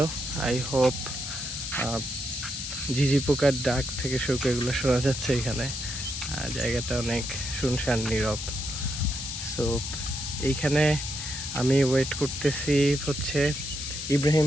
আই হোপ ঝিঝি পোকার ডাক থেকে শুরু করে এগুলো শোনা যাচ্ছে এখানে। জায়গাটা অনেক শুনশান নীরব। সো এইখানে আমি ওয়েট করতেছি হচ্ছে ইব্রাহিম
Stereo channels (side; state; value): left; noise; hiss, 6 dB below the sound